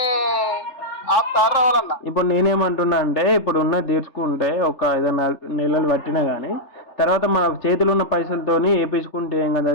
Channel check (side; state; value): right; late; 3.3 ms